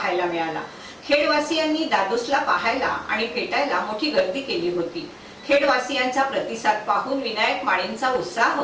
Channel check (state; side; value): identical; both; correlation 1.00